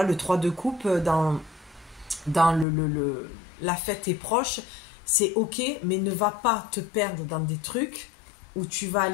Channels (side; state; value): right; drops out; at 2.7 s